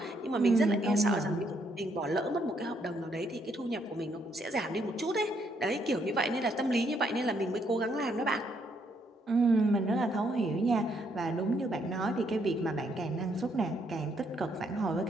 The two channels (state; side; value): normal; both; correlation 0.72